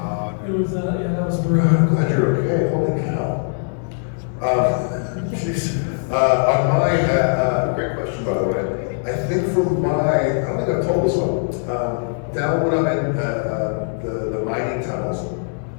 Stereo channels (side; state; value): right; silent; 61 dB below the other